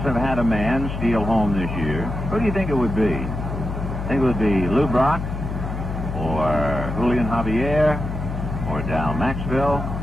have had a man steal home this year. Who do you think it would be? Think it would be Lou Brock? Or Julian Javier? Or Dal Maxville?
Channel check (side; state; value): left; noise; hum, 5 dB below the sound